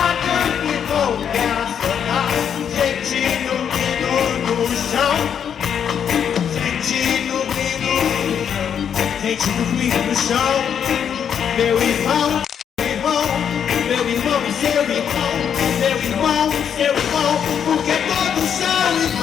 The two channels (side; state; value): right; quieter; 8.2 dB